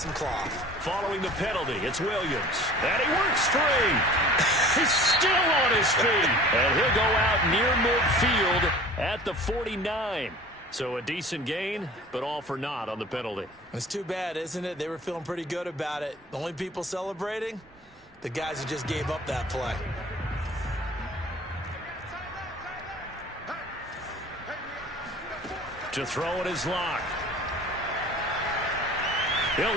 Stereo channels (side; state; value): both; normal; correlation 0.43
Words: cloth. Following the penalty, it's Williams. And he works free. He's still on his feet. And he'll go out near midfield at the 49. So a decent gain, but all for naught on the penalty. It's too bad, isn't it? They were feeling pretty good about it. The only people celebrating? The guys who just gave up that play. To throw it is Locke. He'll